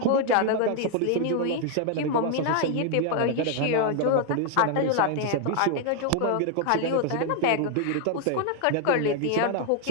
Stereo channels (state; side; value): different; both; correlation 0.00